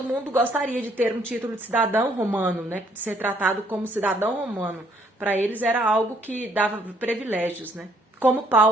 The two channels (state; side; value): normal; both; correlation 0.66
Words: mundo gostaria de ter um título de cidadão romano, né? De ser tratado como cidadão romano. Para eles era algo que dava privilégios, né? Como